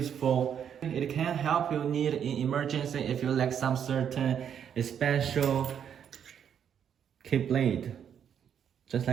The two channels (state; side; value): quieter; left; 8.5 dB